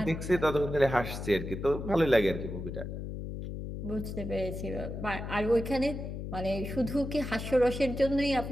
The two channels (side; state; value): left; noise; hum, 7 dB below the sound